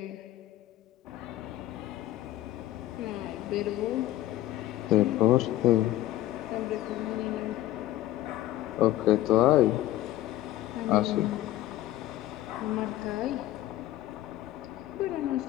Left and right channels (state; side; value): quieter; right; 14.4 dB